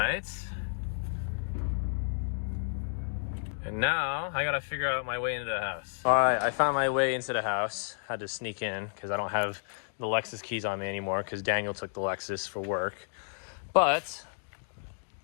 And now I gotta figure out my way into the house. All right, I found my way into the house. Had to sneak in because I don't have the Lexus keys on me anymore because Daniel took the Lexus for work. But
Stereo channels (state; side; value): silent; right; digital silence